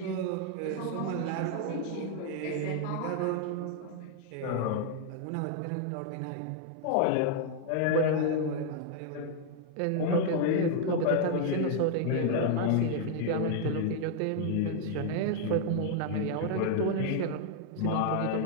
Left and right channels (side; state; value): both; different; correlation 0.00